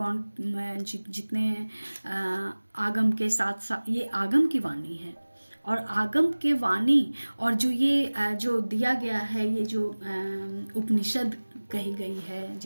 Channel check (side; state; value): both; inverted; correlation -1.00